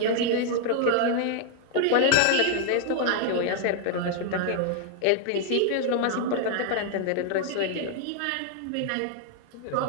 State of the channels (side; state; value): both; different; correlation 0.00